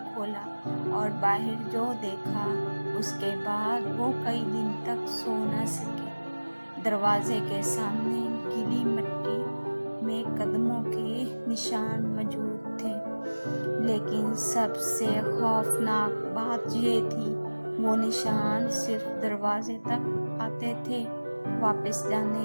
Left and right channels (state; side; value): inverted; both; correlation -1.00